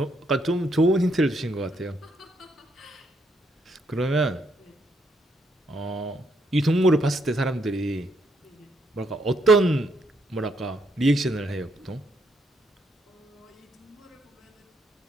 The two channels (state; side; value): normal; both; correlation 0.75